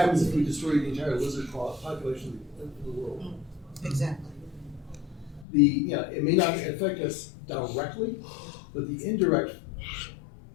if we destroy the entire lizard population of the world? Exactly. It may not affect us directly, but the indirect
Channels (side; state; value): right; drops out; at 5.5 s